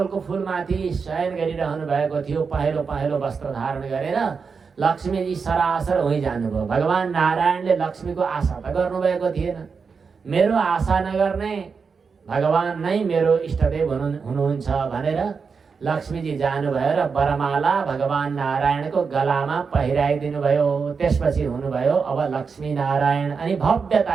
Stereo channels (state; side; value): quieter; left; 5.4 dB